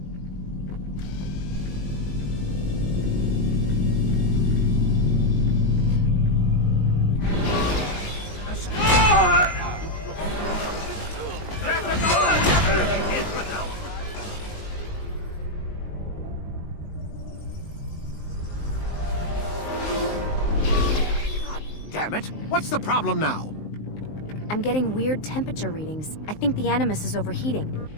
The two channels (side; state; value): right; late; 19 ms